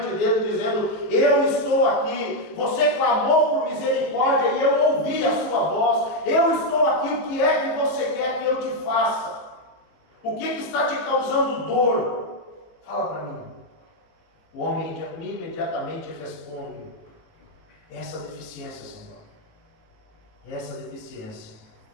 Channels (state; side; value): late; right; 18 ms